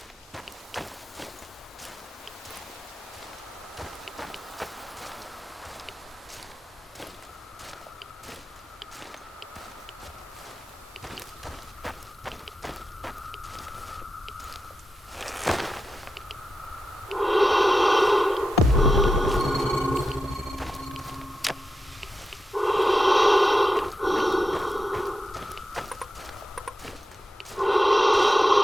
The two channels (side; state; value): both; normal; correlation 0.89